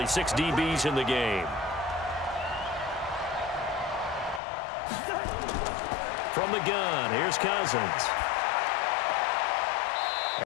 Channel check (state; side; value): drops out; right; at 4.4 s